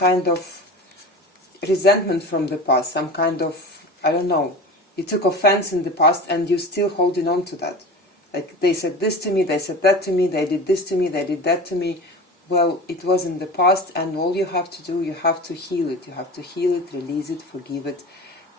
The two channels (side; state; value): both; normal; correlation 0.33